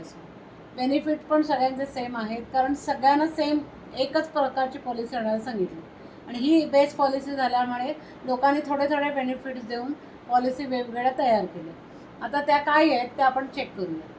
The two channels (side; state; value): both; identical; correlation 1.00